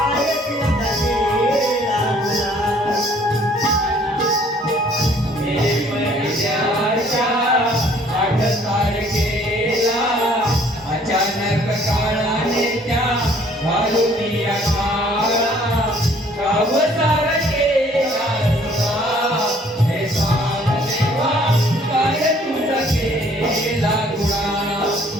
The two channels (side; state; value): both; normal; correlation 0.59